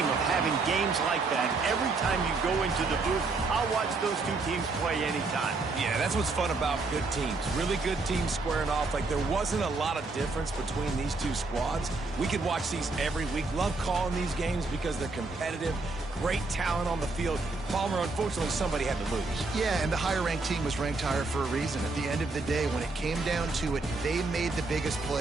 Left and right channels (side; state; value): left; quieter; 3.6 dB